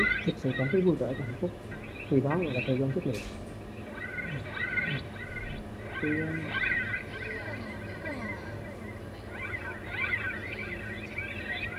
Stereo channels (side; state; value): both; identical; correlation 1.00